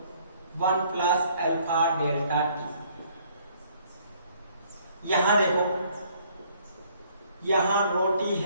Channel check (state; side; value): inverted; both; correlation -0.62